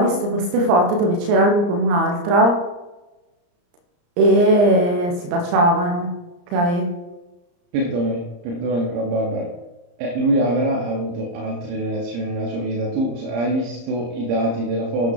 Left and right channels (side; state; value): left; late; 34 ms